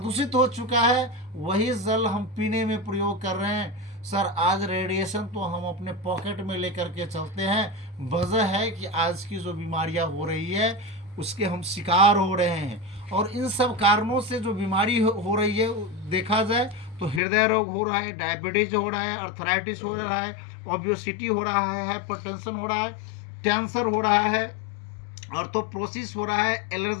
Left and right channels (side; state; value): right; drops out; at 17.2 s